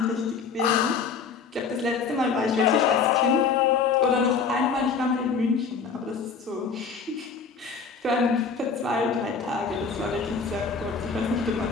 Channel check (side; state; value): right; quieter; 5.5 dB